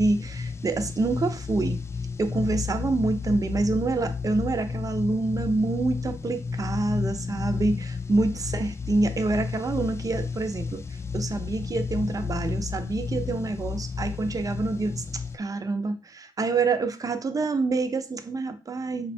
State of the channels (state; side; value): normal; both; correlation 0.82